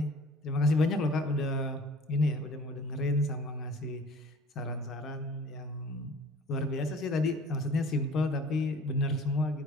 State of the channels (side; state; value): both; normal; correlation 0.47